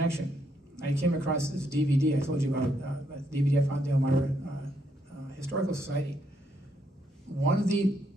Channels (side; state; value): both; normal; correlation 0.75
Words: I came across this DVD I told you about, the DVD I found at the Elmira Historical Society. One of the